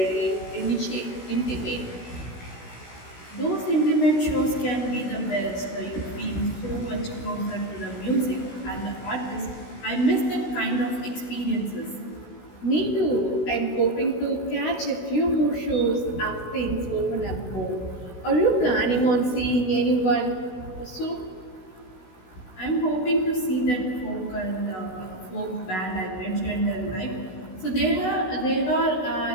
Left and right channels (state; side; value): late; right; 16 ms